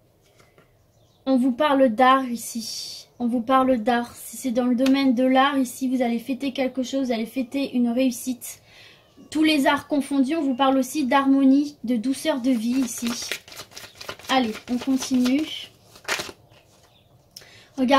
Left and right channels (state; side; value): identical; both; correlation 1.00